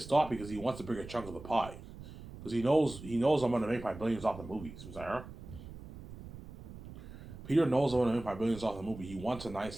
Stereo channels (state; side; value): noise; right; rumble, 14 dB below the sound